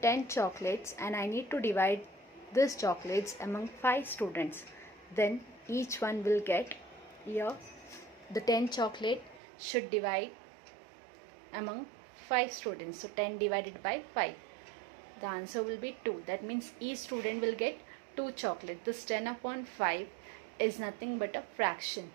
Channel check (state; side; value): drops out; left; at 9.4 s